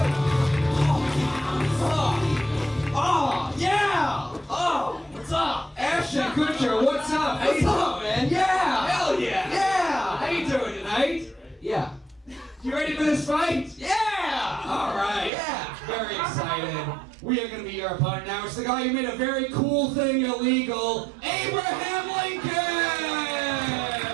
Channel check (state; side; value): drops out; left; at 15.3 s